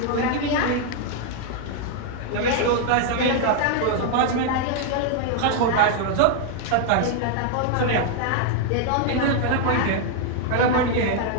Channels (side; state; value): both; different; correlation 0.00